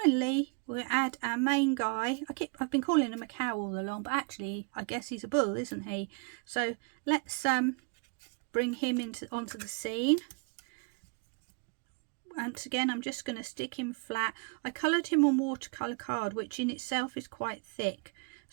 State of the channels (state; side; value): quieter; left; 35.5 dB